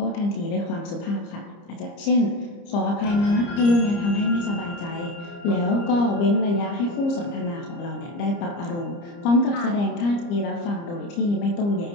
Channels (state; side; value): late; right; 30 ms